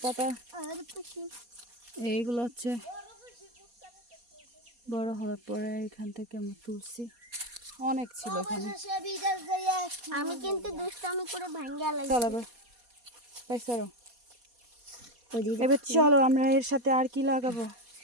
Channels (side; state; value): left; late; 4.2 ms